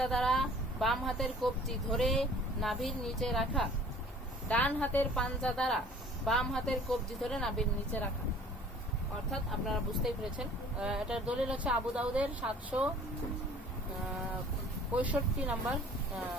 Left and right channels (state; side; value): normal; both; correlation 0.50